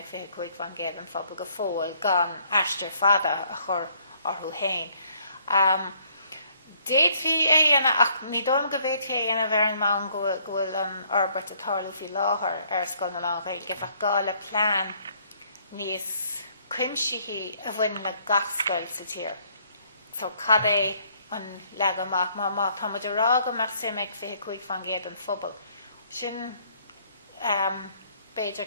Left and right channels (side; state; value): both; inverted; correlation -0.64